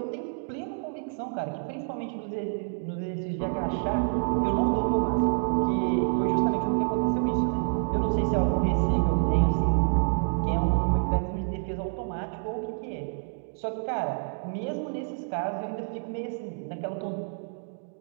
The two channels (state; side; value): silent; left; digital silence